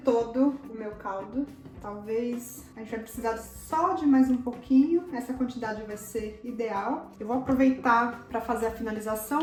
o meu caldo. Talvez a gente vai precisar só de mais um pouquinho. Essa quantidade vai ser ideal. Eu vou aproveitar para fazer a finalização.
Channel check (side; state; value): both; identical; correlation 1.00